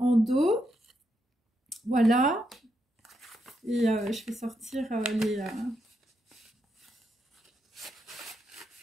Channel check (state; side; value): normal; both; correlation 0.81